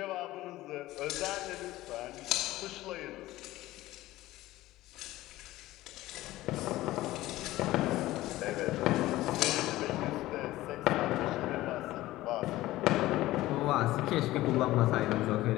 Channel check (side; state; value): right; quieter; 16.7 dB